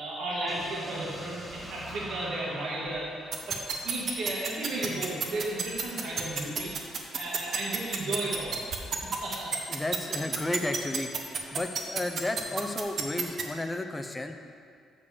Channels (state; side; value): normal; both; correlation 0.79